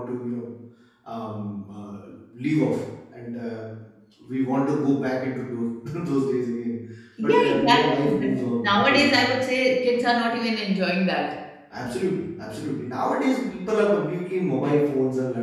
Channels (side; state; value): both; identical; correlation 1.00